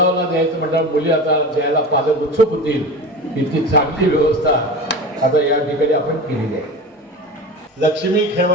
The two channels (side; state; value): both; normal; correlation 0.30